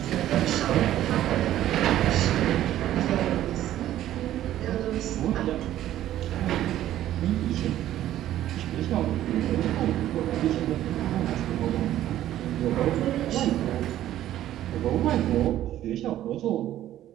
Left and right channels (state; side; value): quieter; left; 12.9 dB